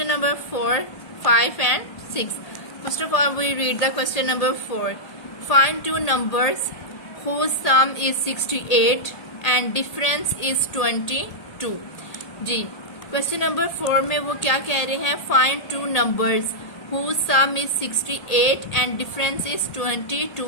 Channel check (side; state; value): right; late; 1.8 ms